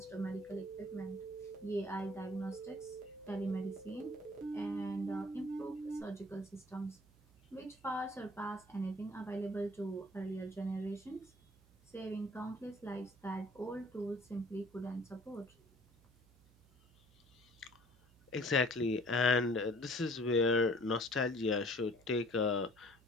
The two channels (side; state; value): right; noise; hum, 27 dB below the sound